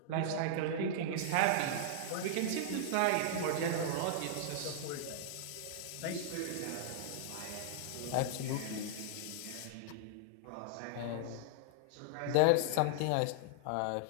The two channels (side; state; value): both; different; correlation -0.01